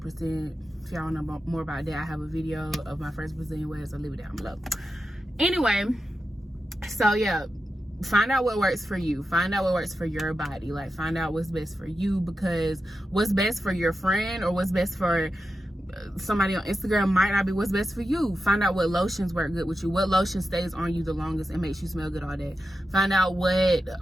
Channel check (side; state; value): both; normal; correlation 0.90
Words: If y'all want to know more about that, I have a video of my first Brazilian wax. I'll leave it down below. Anyway, so yeah, find out what works for you. Find out what works for your body. Like, find out what's best for you, because what's best for your friend or what's best for somebody on Instagram might not be what's best for you. Find out what lotions work good with you, what lotion stays on you the longest and makes you smell good all day. Find out what